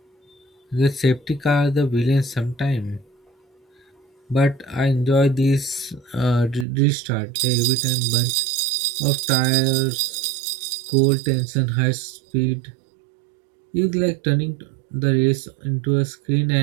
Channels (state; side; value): drops out; left; at 6.7 s